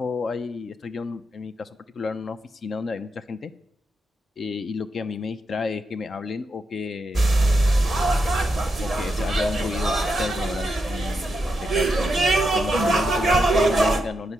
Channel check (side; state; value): both; normal; correlation 0.84